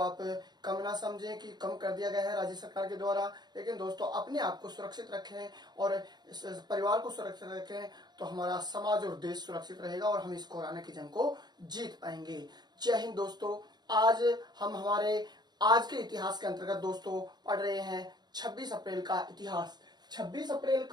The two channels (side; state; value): left; late; 0.20 ms